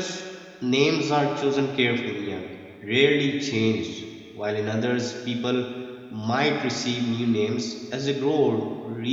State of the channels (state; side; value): identical; both; correlation 1.00